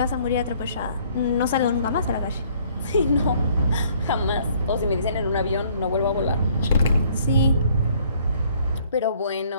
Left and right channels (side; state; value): both; inverted; correlation -0.61